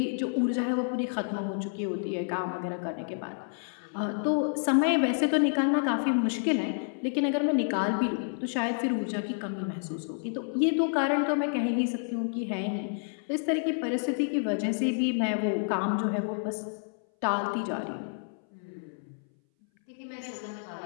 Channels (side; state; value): right; silent; 58 dB below the other